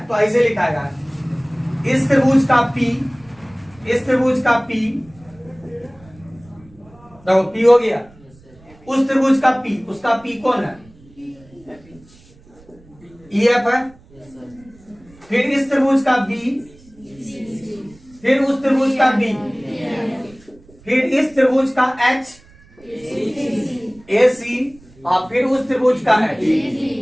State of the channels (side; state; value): right; noise; rumble, 26 dB below the sound